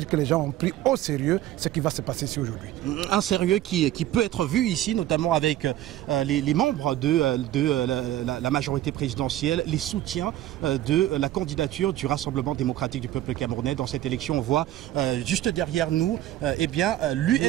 que les gens ont pris au sérieux ce qui va se passer ici aujourd'hui. Un sérieux qui peut être vu ici, notamment avec les membres de la majorité présidentielle, les soutiens de la candidature du Rassemblement démocratique du peuple camerounais. Dans cette élection, on voit juste derrière nous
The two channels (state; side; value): quieter; left; 13.8 dB